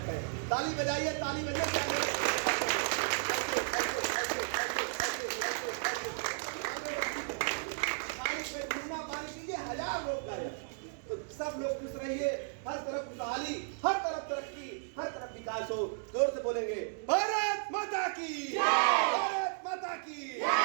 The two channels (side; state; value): left; silent; digital silence